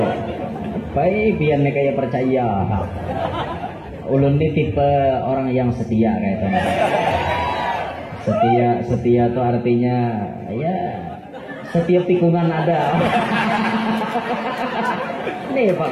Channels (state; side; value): identical; both; correlation 1.00